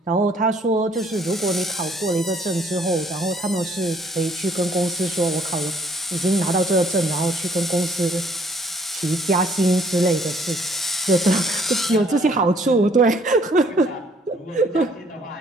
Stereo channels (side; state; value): both; normal; correlation 0.63